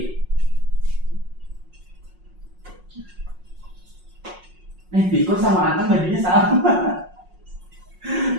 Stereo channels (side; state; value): left; late; 5.5 ms